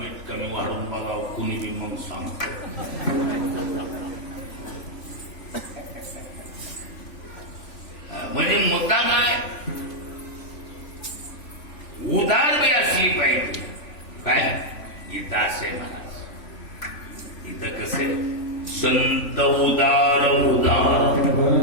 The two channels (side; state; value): right; late; 3.5 ms